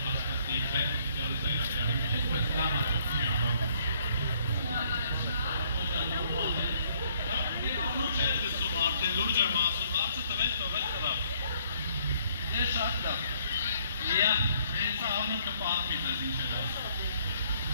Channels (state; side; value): inverted; both; correlation -0.65